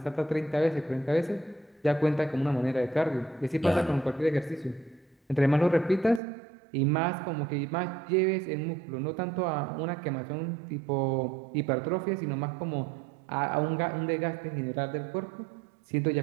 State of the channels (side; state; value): left; drops out; at 6.2 s